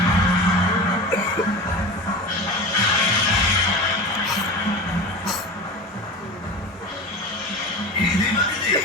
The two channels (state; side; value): normal; both; correlation 0.30